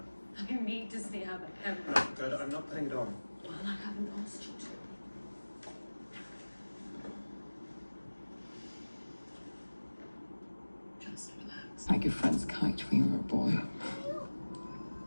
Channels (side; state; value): both; inverted; correlation -1.00